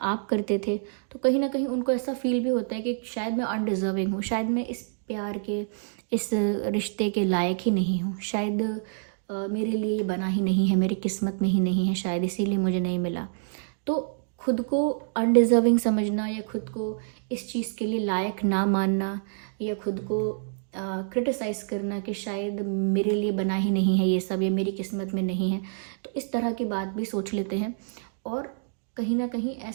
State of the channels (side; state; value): left; silent; digital silence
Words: करते थे। तो कहीं ना कहीं उनको ऐसा फील भी होता है कि शायद मैं अनडिजर्विंग हूँ, शायद मैं इस प्यार के, इस रिश्ते के लायक ही नहीं हूँ, शायद मेरे लिए ये बना ही नहीं है, मेरी किस्मत में ही नहीं है, शायद इसीलिए मुझे नहीं मिला। तो खुद को अनडिजर्विंग समझना, या खुद को इस चीज़ के लिए लायक ना मानना, या खुद को क्रिटिसाइज़ करना कि शायद मेरे लिए बना ही नहीं है ये सब, या मेरी किस्मत में नहीं है, तो इस तरह की बात भी सोच लेते हैं। और कहीं ना कहीं